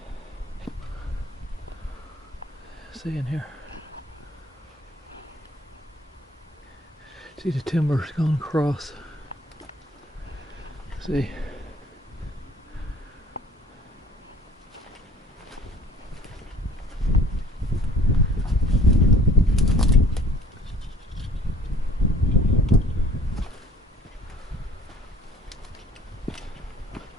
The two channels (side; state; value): both; normal; correlation 0.52